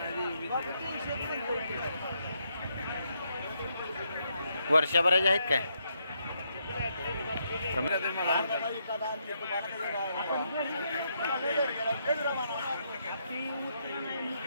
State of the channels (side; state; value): both; inverted; correlation -0.77